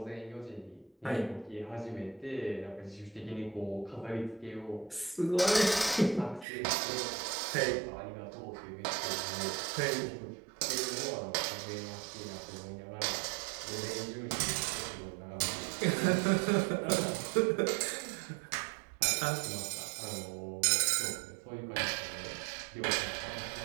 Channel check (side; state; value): left; drops out; at 6.5 s